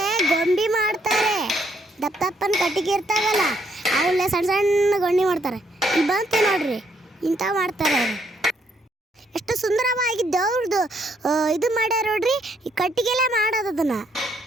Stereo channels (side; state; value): both; normal; correlation 0.72